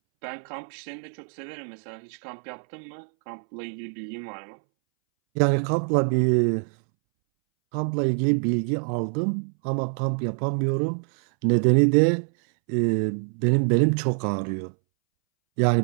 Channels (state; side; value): silent; left; 62 dB below the other